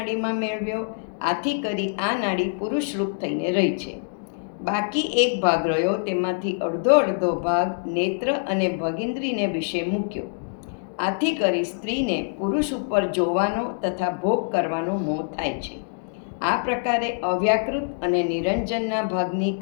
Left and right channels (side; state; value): right; silent; digital silence